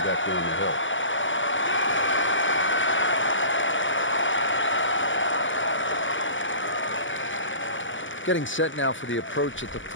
down the hill. Getting set now for the approach at the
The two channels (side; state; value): right; late; 0.56 ms